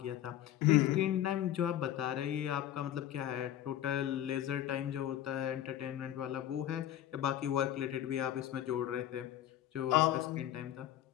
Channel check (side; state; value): right; quieter; 12.0 dB